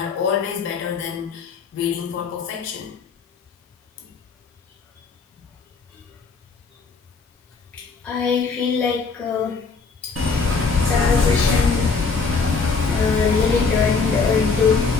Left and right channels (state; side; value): quieter; right; 4.8 dB